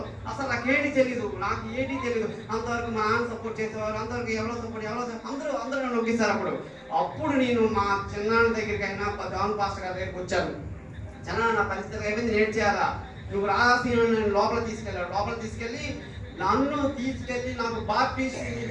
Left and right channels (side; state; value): both; identical; correlation 1.00